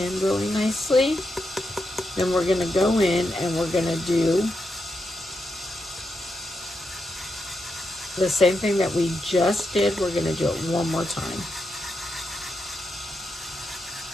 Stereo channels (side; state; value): both; normal; correlation 0.85